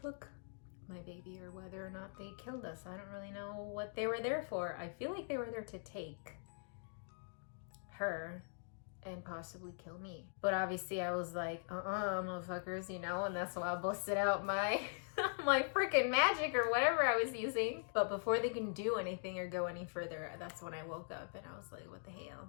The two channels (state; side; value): silent; right; digital silence